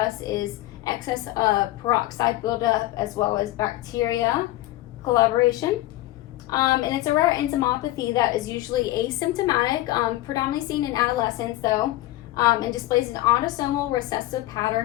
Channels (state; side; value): quieter; right; 16.8 dB